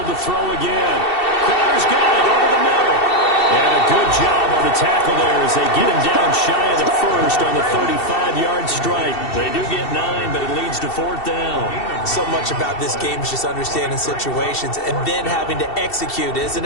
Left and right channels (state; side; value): late; right; 2.7 ms